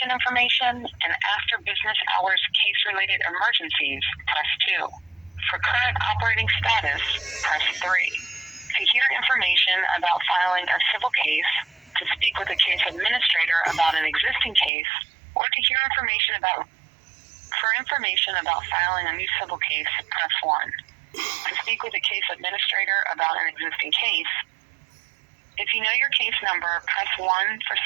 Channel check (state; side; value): drops out; left; at 14.7 s